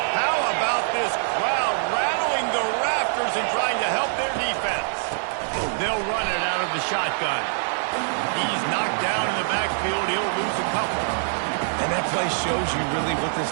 How about this crowd rattling the rafters and trying to help their defense? They'll run it out of the shotgun. He's knocked down in the backfield. He'll lose a couple. And that play shows you really what this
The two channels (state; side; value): silent; left; digital silence